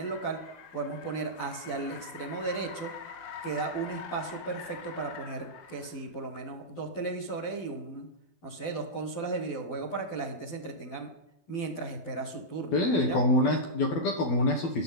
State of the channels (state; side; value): late; right; 12 ms